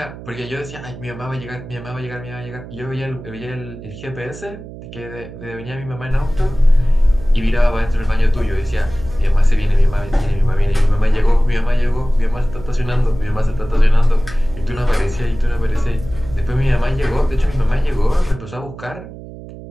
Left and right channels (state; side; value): noise; right; hum, 14 dB below the sound